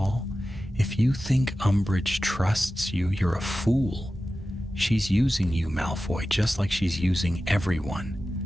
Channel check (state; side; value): normal; both; correlation 0.94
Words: "If you think Umbridge trusts you, you're a fool. She's using you, Malfoy, just like she's using everyone.